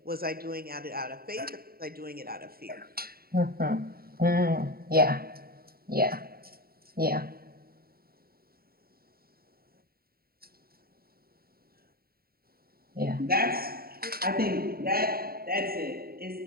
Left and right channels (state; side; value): late; left; 0.44 ms